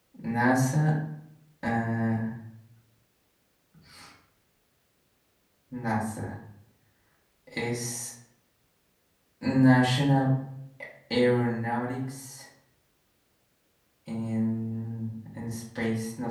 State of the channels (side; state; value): both; identical; correlation 1.00